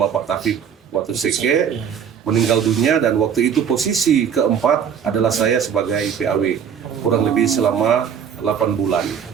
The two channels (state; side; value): quieter; left; 7.9 dB